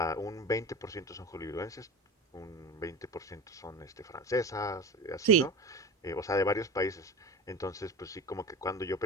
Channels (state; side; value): normal; both; correlation 0.29